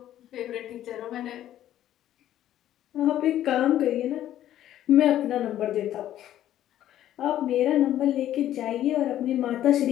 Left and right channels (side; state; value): right; quieter; 12.2 dB